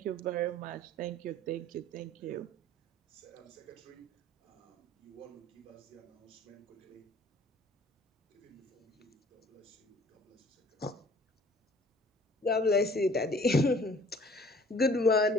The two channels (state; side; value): normal; both; correlation 0.53